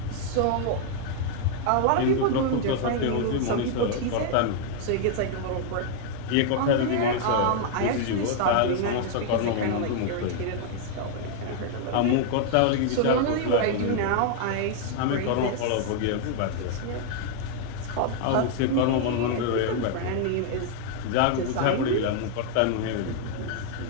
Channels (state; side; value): different; both; correlation 0.00